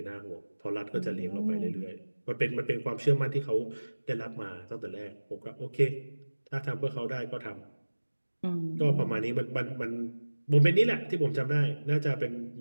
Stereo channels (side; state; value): both; inverted; correlation -1.00